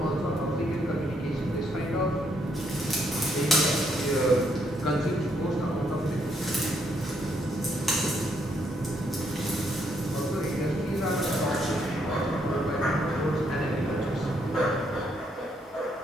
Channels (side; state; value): both; normal; correlation 0.73